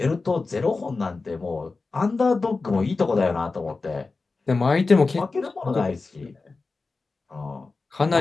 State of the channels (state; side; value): quieter; right; 3.9 dB